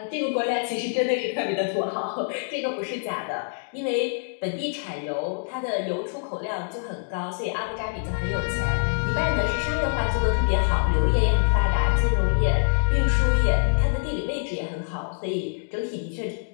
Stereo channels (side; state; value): right; silent; digital silence